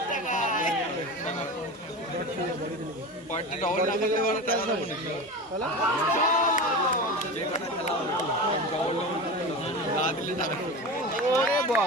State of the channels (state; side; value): normal; both; correlation 0.27